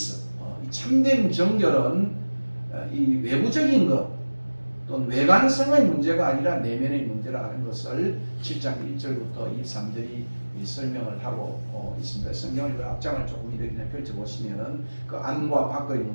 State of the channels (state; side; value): inverted; both; correlation -1.00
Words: 이 참된 정결은 이 외부적인 것 또는 외관성의 문제가 아니라 내면의 문제라 하는 것을 7장 1절부터 23절이 설명을 하고 있습니다. 성경을 앞장을 조금 이렇게 펼쳐보시면은 그 안과 밖의